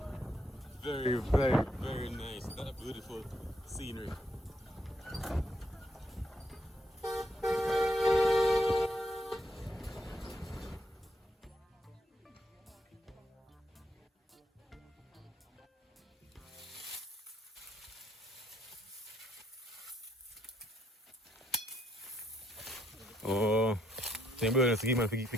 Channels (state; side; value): normal; both; correlation 0.74